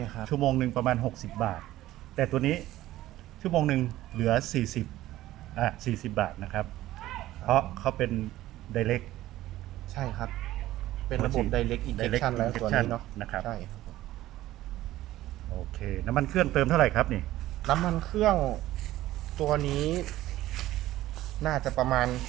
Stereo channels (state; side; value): quieter; left; 15.3 dB